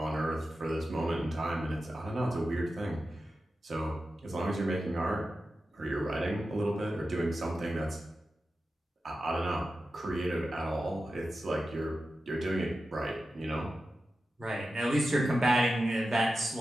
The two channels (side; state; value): both; normal; correlation 0.92